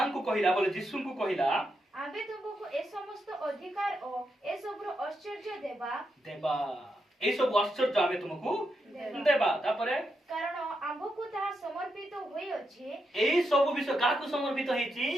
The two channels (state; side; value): normal; both; correlation 0.84